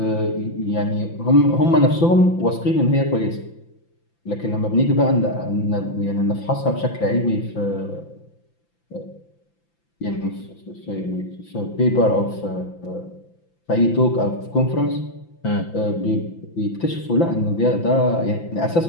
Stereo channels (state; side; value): late; right; 5.9 ms